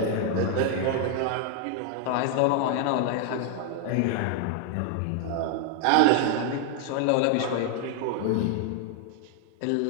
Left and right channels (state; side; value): different; both; correlation 0.00